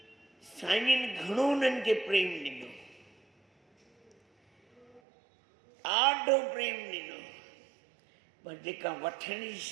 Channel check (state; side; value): drops out; left; at 5.0 s